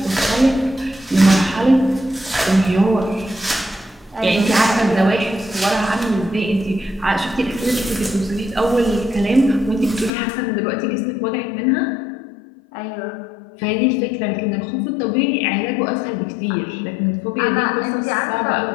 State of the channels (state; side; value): drops out; right; at 10.1 s